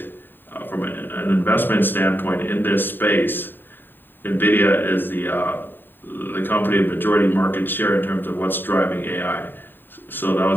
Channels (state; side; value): late; right; 0.094 ms